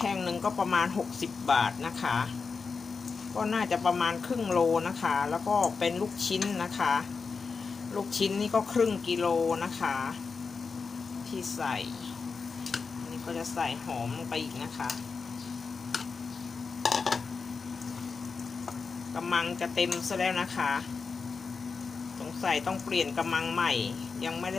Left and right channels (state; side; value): quieter; right; 4.9 dB